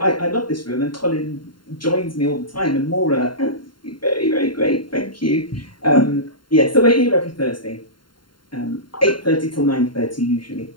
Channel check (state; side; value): late; right; 0.72 ms